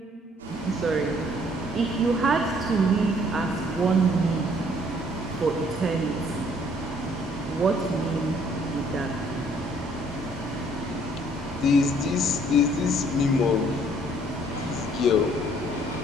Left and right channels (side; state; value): both; normal; correlation 0.61